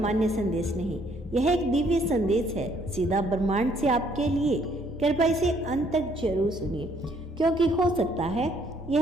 संदेश नहीं, यह एक दिव्य संदेश है सीधा ब्रह्मांड से आपके लिए। कृपया इसे अंत तक जरूर सुनिए, क्योंकि हो सकता है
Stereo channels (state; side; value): normal; both; correlation 0.65